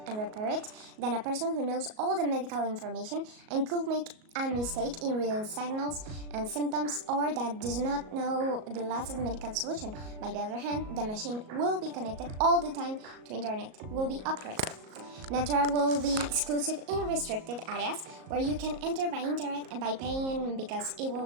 and repair it than a person who knows all the medical information and could make a mistake in reading signals and symptoms, or that does not know the latest medical solution. By the other hand, the machine will be connected all the time to internet, will be upgraded. Natura will be exclusive in restricted areas where you can enter by internet and by paying, because it will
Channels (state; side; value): late; left; 37 ms